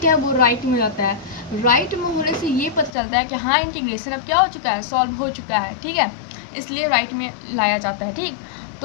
है वो राइट में जाता है। राइट में होने से ये पता चलता है कि हाँ इंटीग्रेशन अब क्या हो चुका है? सॉल्व हो चुका है, ठीक है। इसलिए राइट में लाया जाता है, ठीक।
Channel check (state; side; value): drops out; right; at 2.9 s